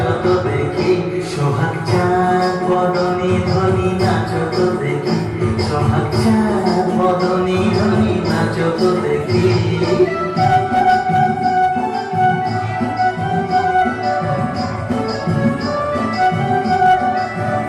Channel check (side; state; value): both; identical; correlation 1.00